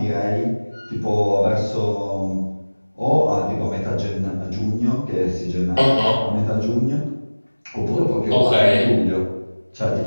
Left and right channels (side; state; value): both; inverted; correlation -1.00